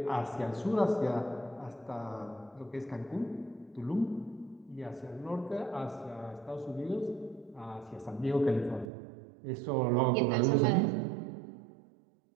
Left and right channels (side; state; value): left; drops out; at 8.9 s